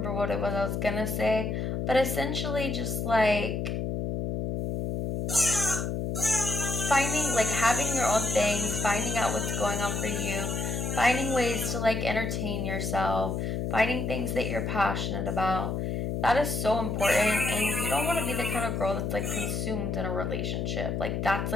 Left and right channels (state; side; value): noise; left; hum, 1 dB below the sound